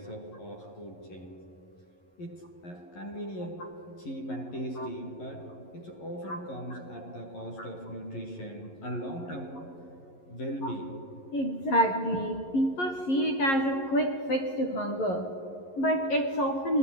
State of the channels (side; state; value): right; late; 11 ms